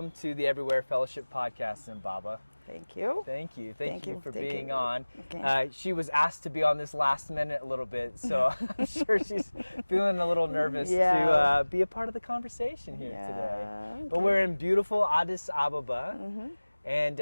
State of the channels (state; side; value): inverted; both; correlation -1.00